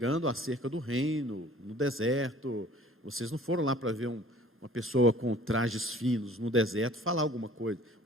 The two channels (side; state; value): both; normal; correlation 0.51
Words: acerca do reino, no deserto. Vocês não foram lá para ver uma pessoa com trajes finos no deserto falar alguma coisa.